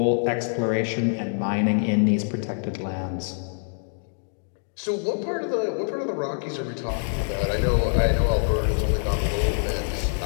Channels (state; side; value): silent; right; digital silence